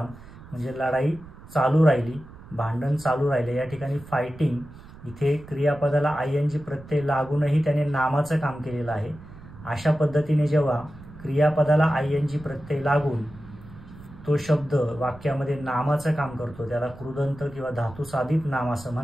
म्हणजे लढाई चालू राहिली, भांडण चालू राहिले. या ठिकाणी फायटिंग इथे क्रियापदाला ING प्रत्यय लागूनही त्याने नामाचं काम केलेलं आहे. अशा पद्धतीने जेव्हा क्रियापदाला ING प्रत्यय लागून तो शब्द वाक्यामध्ये नामाचं काम करतो त्याला कृदंत किंवा धातुसाधित नाम असं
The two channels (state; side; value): noise; right; rumble, 18 dB below the sound